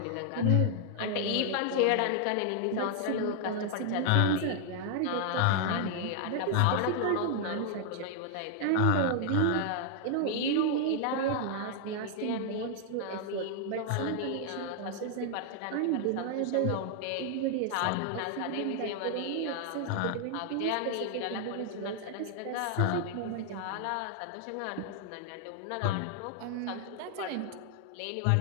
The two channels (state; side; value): different; both; correlation 0.00